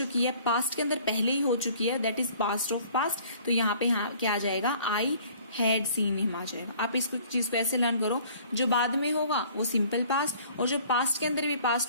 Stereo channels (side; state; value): both; inverted; correlation -0.54